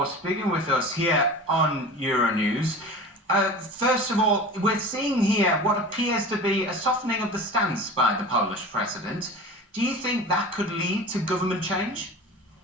speaking with us here on Euronews. First of all, we're seeing here what appears to be a softening of the stance by the Polish president. Do you think that could lead to government change?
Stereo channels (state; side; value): normal; both; correlation 0.35